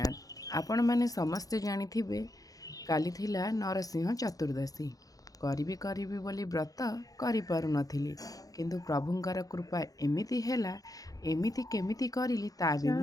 आपण माने समस्ते जानिथिबे काली थिला नरसिंह चतुर्दशी। करिबी बोली व्रत करि पारु नथिली, किंतु प्रभुंकर कृपा एमिति हेला, एमिति केमिति करिली ता भी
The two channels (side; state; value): right; late; 0.17 ms